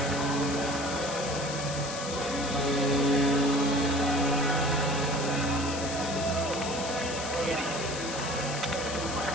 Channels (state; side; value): noise; left; hiss, 8 dB below the sound